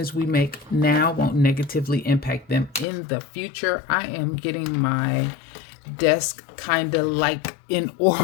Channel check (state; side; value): drops out; right; at 2.9 s